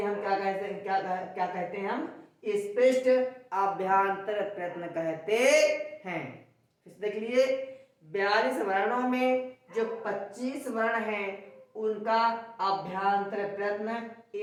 हम क्या कहते हैं? क्या कहते हैं? हम स्पष्ट अभ्यंतर प्रयत्न कहते हैं। देख लिए, 42 वर्णों में जो 25 वर्ण हैं उनका अभ्यंतर प्रयत्न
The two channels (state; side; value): identical; both; correlation 1.00